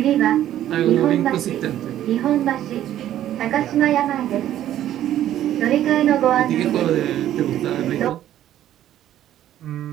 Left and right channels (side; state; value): left; quieter; 12.2 dB